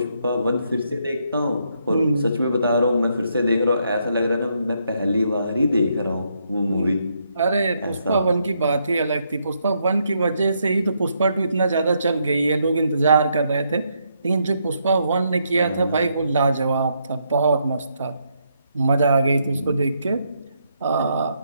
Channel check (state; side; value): inverted; both; correlation -0.76